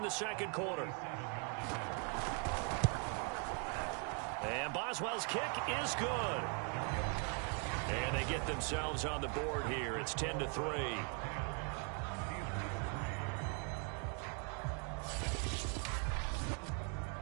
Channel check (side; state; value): left; quieter; 39.3 dB